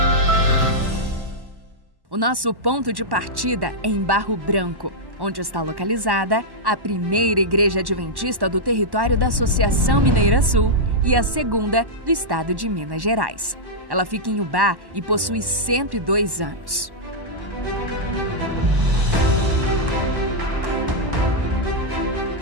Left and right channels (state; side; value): late; left; 1.1 ms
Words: O nosso ponto de partida é em Barro Branco, onde está localizada a primeira igreja adventista do território da Associação Mineira Sul e a segunda do estado de Minas Gerais. Ela fica em Ubá e possui 102 anos.